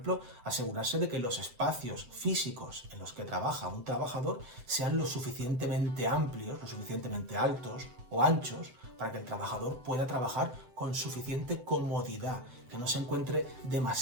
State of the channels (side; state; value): left; late; 7.8 ms